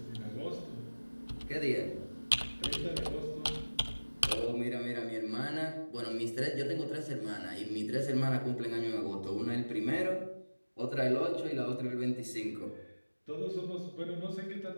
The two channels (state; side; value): inverted; both; correlation -1.00